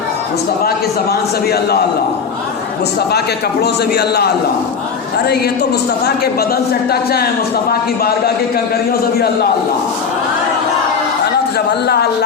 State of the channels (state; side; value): quieter; right; 6.0 dB